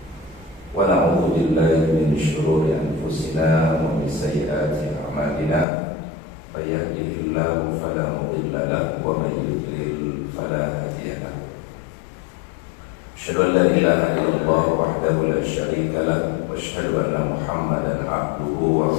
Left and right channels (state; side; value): drops out; right; at 5.7 s